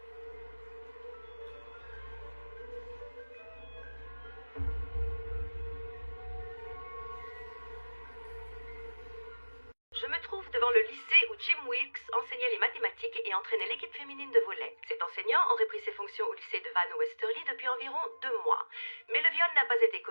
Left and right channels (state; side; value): inverted; both; correlation -1.00